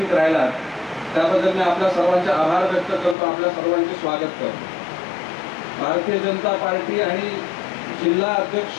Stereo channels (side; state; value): right; drops out; at 3.2 s